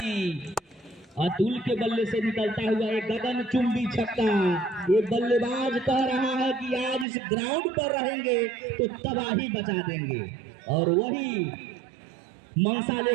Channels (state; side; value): drops out; left; at 7.1 s